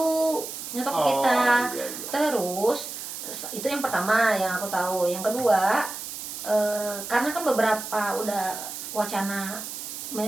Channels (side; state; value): right; noise; hiss, 8 dB below the sound